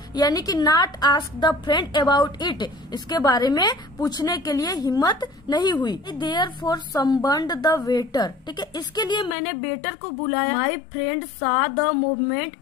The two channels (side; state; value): right; drops out; at 9.3 s